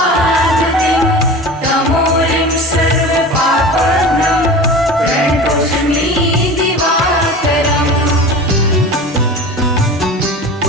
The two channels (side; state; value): both; normal; correlation 0.35